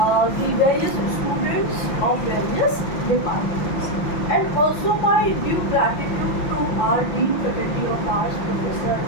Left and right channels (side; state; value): right; late; 5.8 ms